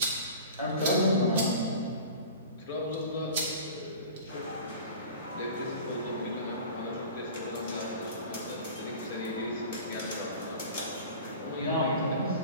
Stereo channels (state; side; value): inverted; both; correlation -0.39